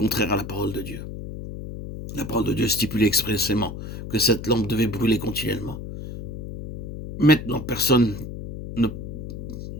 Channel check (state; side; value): noise; left; hum, 9 dB below the sound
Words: à la parole de Dieu. La parole de Dieu stipulait expressément que cette lampe devait brûler continuellement. Maintenant, personne ne